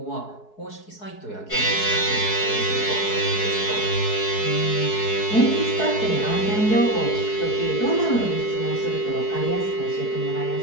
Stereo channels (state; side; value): late; right; 4.7 ms